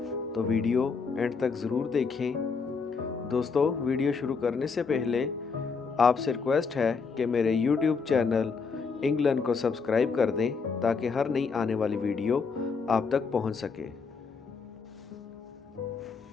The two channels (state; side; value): quieter; right; 5.1 dB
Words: तो वीडियो एंड तक ज़रूर देखें। दोस्तों, वीडियो शुरू करने से पहले आपसे रिक्वेस्ट है कि मेरे यूट्यूब चैनल इंग्लैंड को सब्सक्राइब कर दें ताकि हर नई आने वाली वीडियो आप तक पहुंच सके।